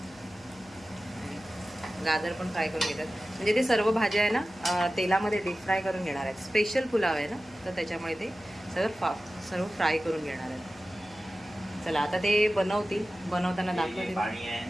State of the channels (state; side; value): noise; left; hum, 26 dB below the sound